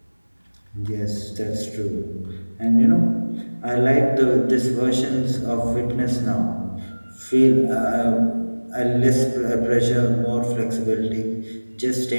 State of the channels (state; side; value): inverted; both; correlation -1.00